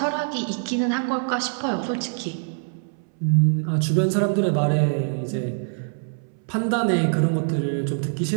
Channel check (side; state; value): left; silent; 63 dB below the other